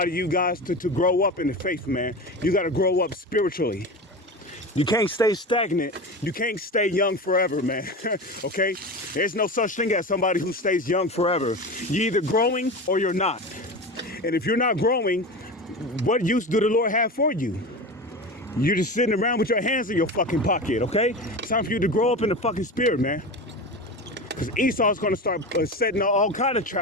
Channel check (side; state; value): both; normal; correlation 0.27